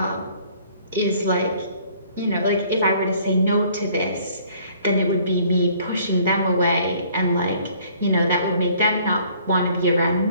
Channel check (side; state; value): both; inverted; correlation -0.58